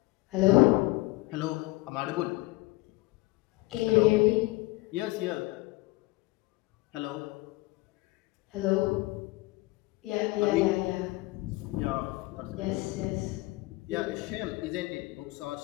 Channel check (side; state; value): right; quieter; 21.0 dB